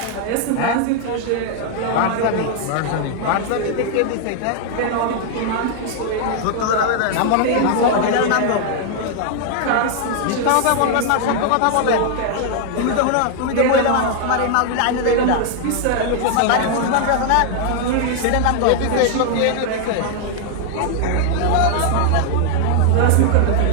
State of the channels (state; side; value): different; both; correlation 0.00